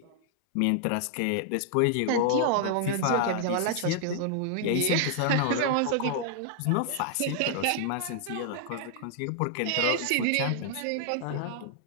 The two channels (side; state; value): both; different; correlation 0.00